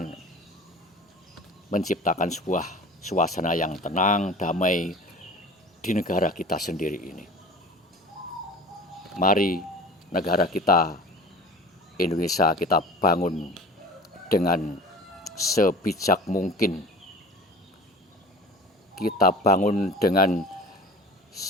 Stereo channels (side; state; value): both; normal; correlation 0.41